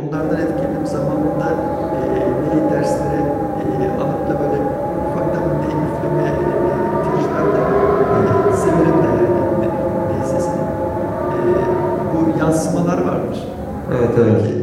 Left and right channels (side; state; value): both; identical; correlation 1.00